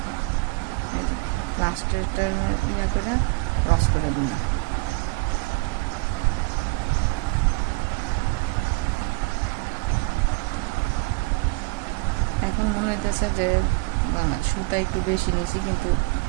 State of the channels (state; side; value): quieter; left; 28.6 dB